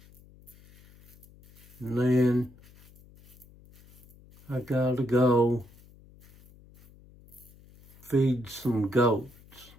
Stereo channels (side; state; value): left; noise; hum, 25 dB below the sound